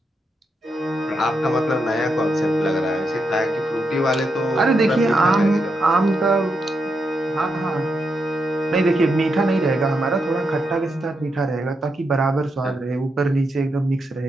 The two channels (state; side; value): normal; both; correlation 0.83